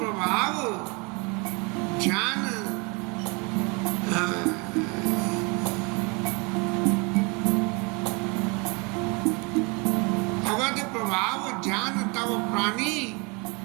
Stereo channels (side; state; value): left; quieter; 30.2 dB